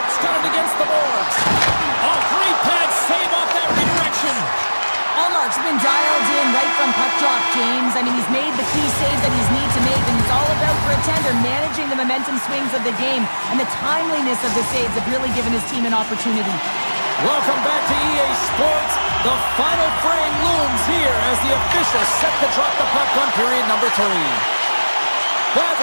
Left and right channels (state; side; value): inverted; both; correlation -1.00